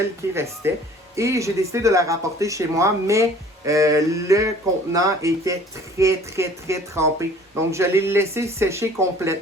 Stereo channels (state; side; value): normal; both; correlation 0.51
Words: qui restait et j'ai décidé de la rapporter chez moi, mais le contenant était très trempé. Donc, je l'ai laissé sécher